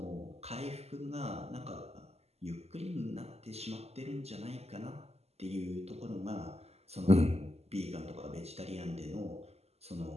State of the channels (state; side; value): late; left; 0.30 ms